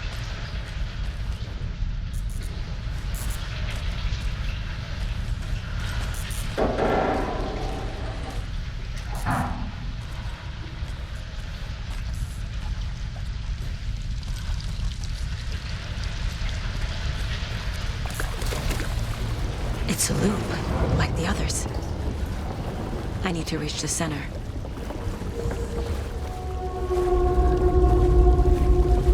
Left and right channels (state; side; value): identical; both; correlation 1.00